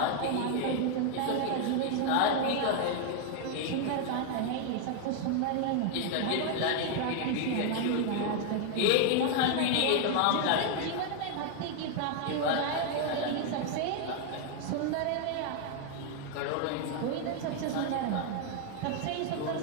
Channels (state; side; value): different; both; correlation 0.00